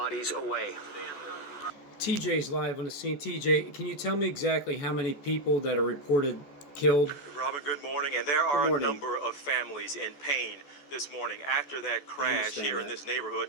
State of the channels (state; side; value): late; right; 14 ms